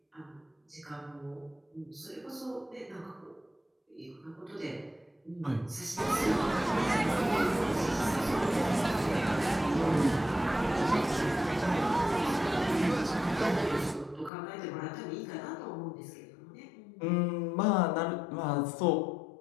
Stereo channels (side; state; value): right; drops out; at 14.3 s